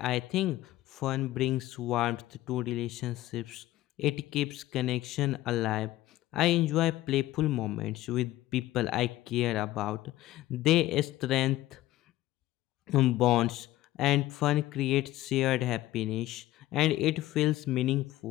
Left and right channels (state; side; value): quieter; right; 15.8 dB